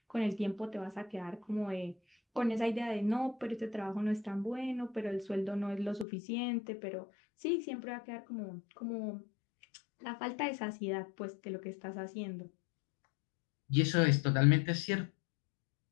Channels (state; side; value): drops out; right; at 6.1 s